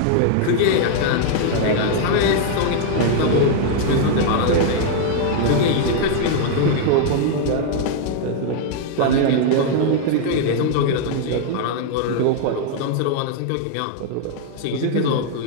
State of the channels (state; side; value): different; both; correlation 0.00